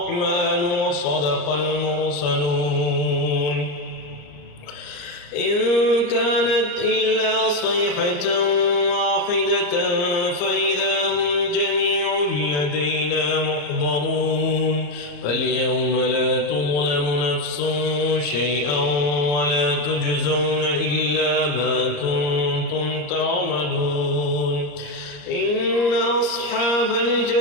وصدق المرسلون إن كانت إلا صيحة واحدة فإذا هم جميع لدينا محضرون فاليوم لا تظلم نفس شيئا ولا تجزون إلا ما كنتم تعملون إن أصحاب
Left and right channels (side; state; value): right; late; 34 ms